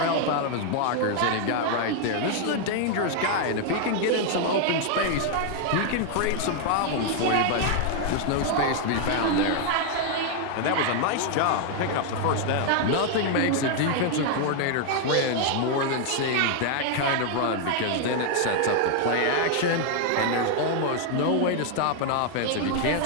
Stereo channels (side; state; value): both; different; correlation 0.00